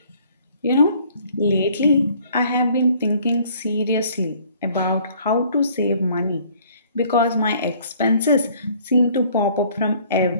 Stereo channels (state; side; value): inverted; both; correlation -0.57